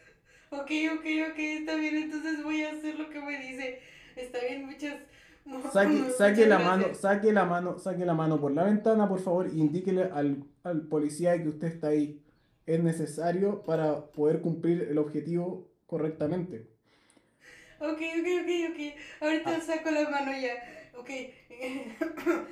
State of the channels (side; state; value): both; identical; correlation 1.00